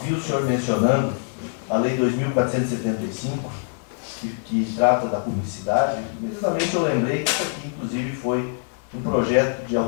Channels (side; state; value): right; silent; digital silence